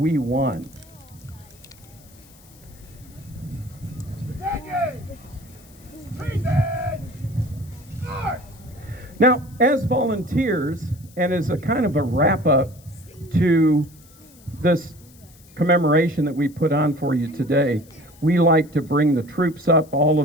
won. Now, as volunteers, and as a kind of a wrap-up to this commemoration that we put on for you today, we like to bring the troops up. All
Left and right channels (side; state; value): left; noise; hiss, 26 dB below the sound